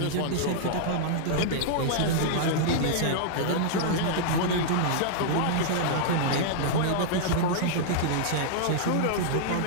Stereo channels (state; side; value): different; both; correlation -0.01